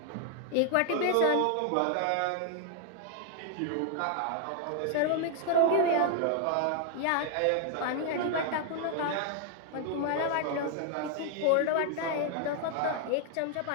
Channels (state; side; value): different; both; correlation 0.00